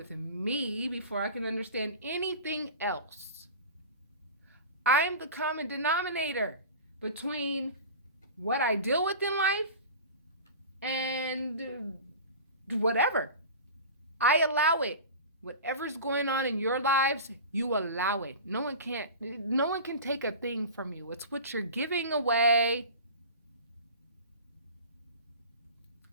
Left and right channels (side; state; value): both; inverted; correlation -0.35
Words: me before I can understand anything else. I'm the common denominator between what I deal with in life and whatever. I allow it. Whatever's going on in your lives, you allow it. No one can take a thing from you. It's what you're giving away.